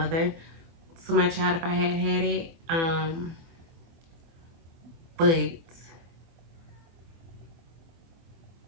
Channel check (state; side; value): late; left; 24 ms